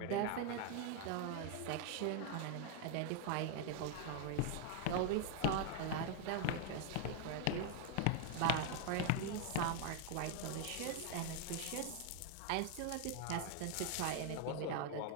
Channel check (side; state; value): both; different; correlation 0.00